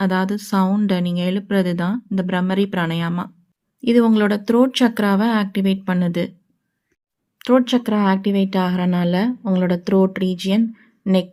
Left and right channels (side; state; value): both; identical; correlation 1.00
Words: அதாவது சவுண்டை நீங்கள் எழுப்புறது தான் இந்த பிரம்மரி பிராணயாமா. இது உங்களோட த்ரோட் சக்ராவை ஆக்டிவேட் பண்ணுது. த்ரோட் சக்ரா ஆக்டிவேட் ஆகிறனால உங்களோட த்ரோட் ரீஜியன்,